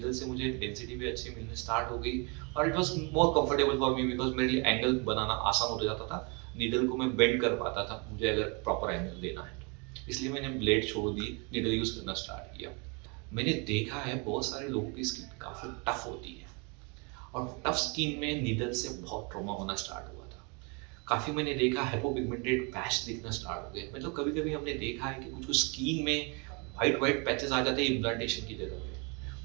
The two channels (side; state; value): left; quieter; 32.3 dB